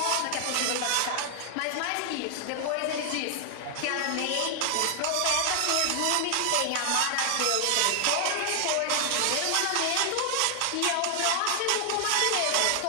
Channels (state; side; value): different; both; correlation 0.00